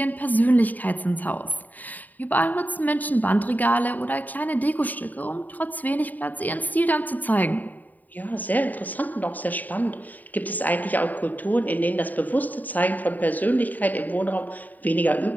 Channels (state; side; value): late; right; 0.082 ms